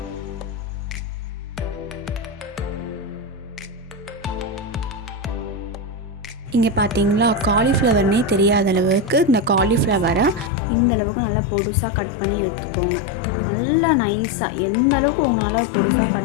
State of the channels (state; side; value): drops out; right; at 10.5 s